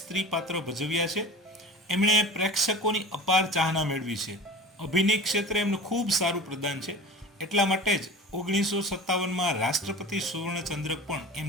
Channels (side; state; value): both; normal; correlation 0.36